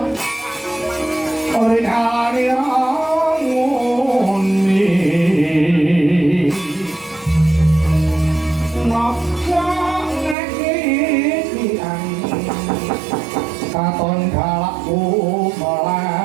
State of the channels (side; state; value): left; drops out; at 10.4 s